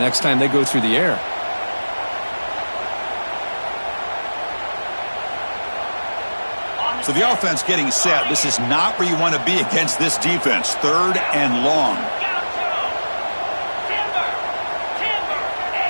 time they go through the air. So the offense getting set. This is not where you want to be against this defense. 3rd and long.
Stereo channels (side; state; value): both; inverted; correlation -1.00